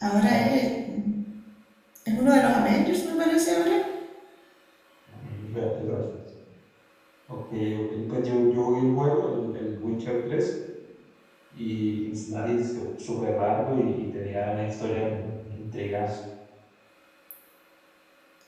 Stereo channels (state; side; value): identical; both; correlation 1.00